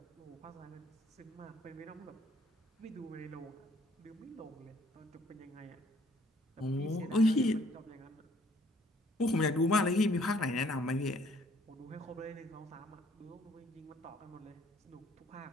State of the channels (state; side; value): normal; both; correlation 0.62